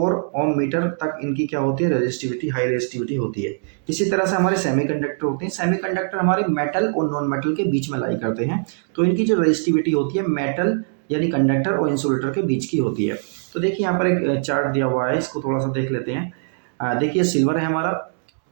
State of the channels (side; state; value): left; silent; digital silence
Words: ओम मीटर तक इनकी क्या होती है, रजिस्टिविटी, हाई रजिस्टिविटी होती है। इसी तरह से हमारे सेमीकंडक्टर होते हैं। सेमीकंडक्टर हमारे मेटल और नॉन मेटल के बीच में लाई करते हैं। तो इनकी जो रजिस्टिविटी होती है मेटल यानी कंडक्टर और इंसुलेटर के बीच की होती है। तो देखिए यहाँ पर एक चार्ट दिया हुआ है, इसको थोड़ा सा देख लेते हैं। देखिए सिल्वर है हमारा,